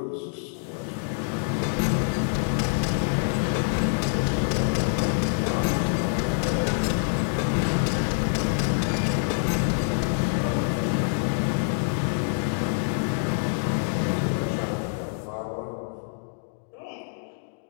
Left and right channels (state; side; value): silent; right; digital silence